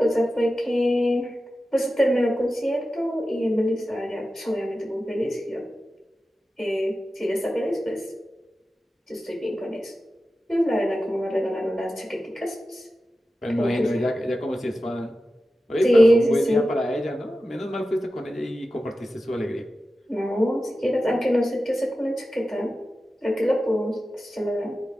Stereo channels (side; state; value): both; normal; correlation 0.93